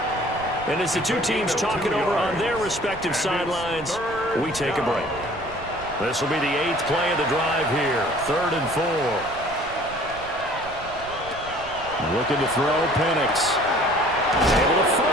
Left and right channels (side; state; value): right; noise; rumble, 16 dB below the sound